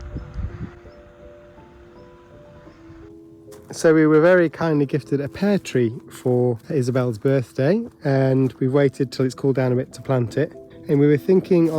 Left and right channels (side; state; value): both; identical; correlation 1.00